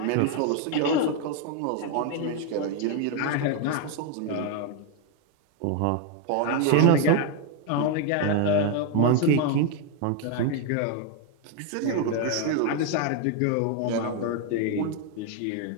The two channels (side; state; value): both; different; correlation 0.01